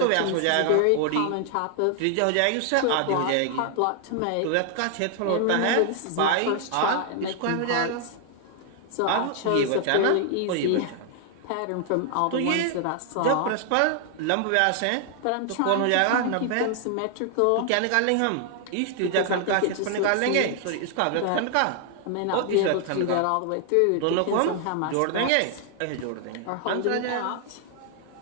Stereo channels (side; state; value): both; different; correlation 0.00